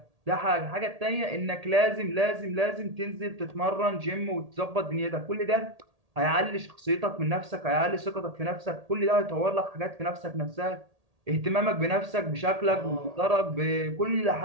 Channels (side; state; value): left; late; 1.8 ms